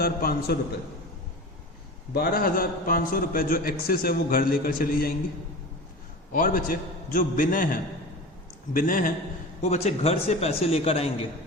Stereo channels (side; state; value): both; normal; correlation 0.32